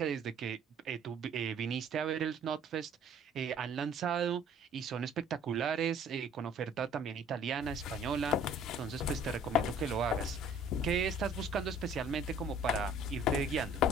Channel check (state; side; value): normal; both; correlation 0.53